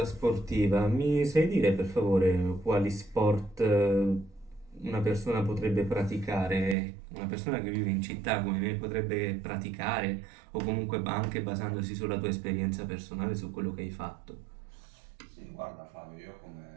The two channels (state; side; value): drops out; left; at 6.8 s